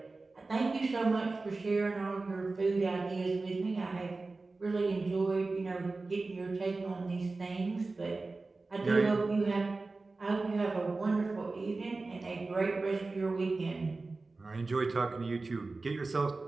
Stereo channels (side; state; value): left; quieter; 3.6 dB